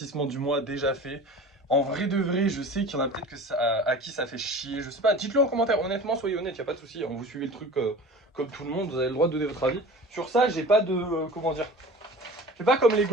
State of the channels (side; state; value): both; normal; correlation 0.39